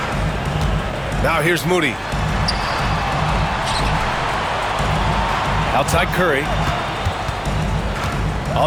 Now here's Moody. Outside Curry.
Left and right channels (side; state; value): both; identical; correlation 1.00